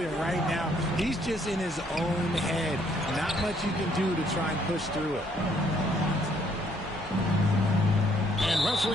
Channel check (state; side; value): normal; both; correlation 0.67